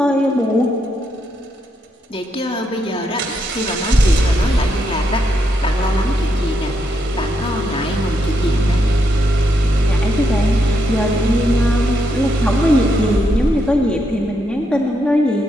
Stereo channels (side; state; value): both; normal; correlation 0.80